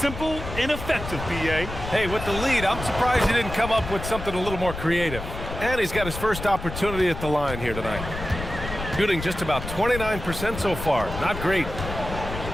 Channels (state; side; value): noise; left; rumble, 8 dB below the sound